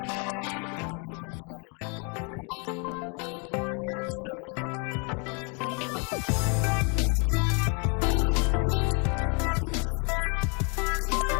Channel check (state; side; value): quieter; right; 35.2 dB